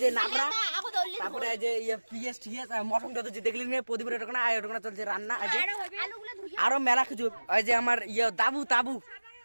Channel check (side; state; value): both; inverted; correlation -1.00